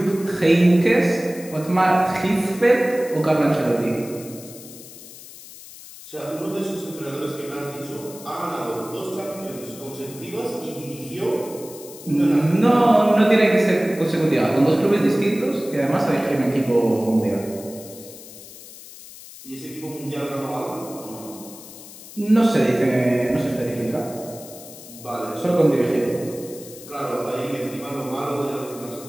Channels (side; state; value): left; noise; hiss, 17 dB below the sound